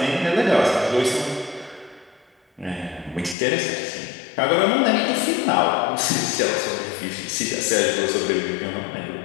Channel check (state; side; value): drops out; right; at 3.4 s